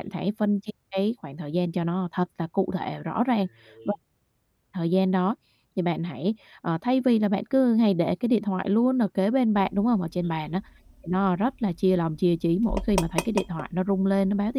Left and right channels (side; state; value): both; identical; correlation 1.00